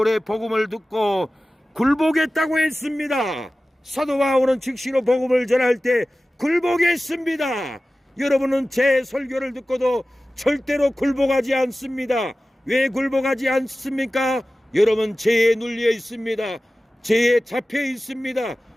복음을 듣고 굴복했다고 했습니다. 사도 바울은 즉시로 복음을 전할 때 굴복했습니다. 여러분은 제 설교를 듣고도 절대로 굴복하지 않습니다. 왜 굴복하지 않습니까? 여러분 죄에 눌려 있습니다. 죄에 잡혀 있습니다.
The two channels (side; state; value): both; normal; correlation 0.96